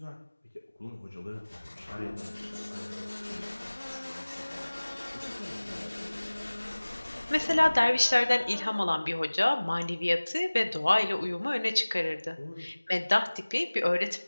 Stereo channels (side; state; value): both; inverted; correlation -1.00